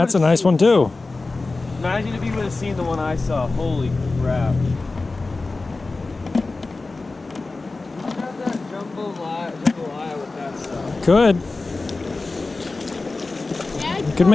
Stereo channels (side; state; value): right; quieter; 3.5 dB